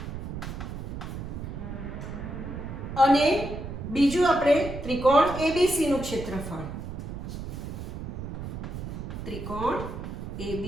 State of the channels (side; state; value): right; noise; rumble, 7 dB below the sound